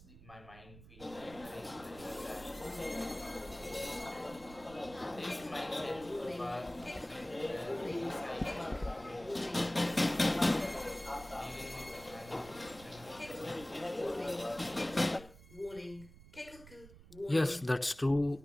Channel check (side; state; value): right; noise; rumble, 19 dB below the sound